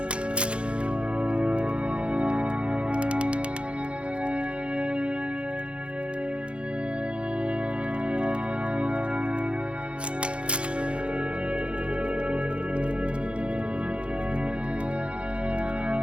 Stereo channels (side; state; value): left; late; 0.058 ms